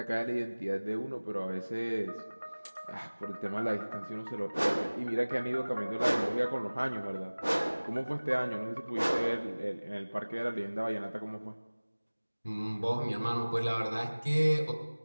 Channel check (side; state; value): both; inverted; correlation -1.00